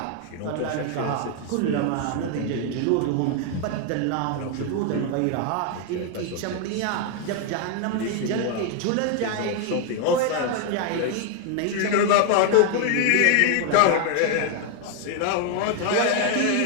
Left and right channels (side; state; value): both; different; correlation 0.00